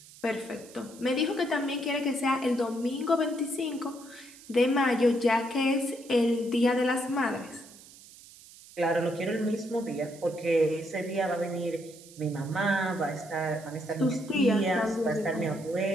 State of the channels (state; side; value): noise; right; hiss, 21 dB below the sound